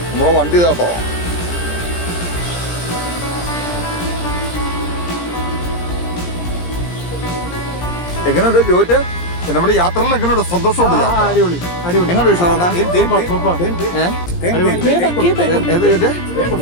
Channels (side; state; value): right; late; 17 ms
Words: നമ്മളെ വണ്ടി കേട്ടോ. എങ്ങനെയുണ്ട് ജോറ്റ്? നമ്മുടെ യാത്രയിൽ എങ്ങനെയുണ്ട്? സന്തോഷമുണ്ട്? എങ്ങനെയുണ്ട് വിഷാദ?